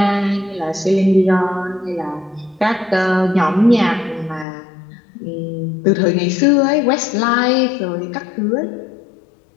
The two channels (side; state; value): right; drops out; at 4.5 s